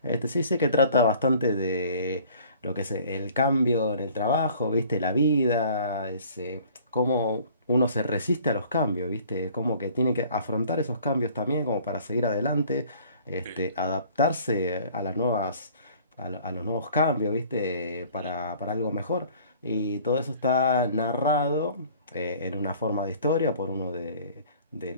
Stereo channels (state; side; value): inverted; both; correlation -0.52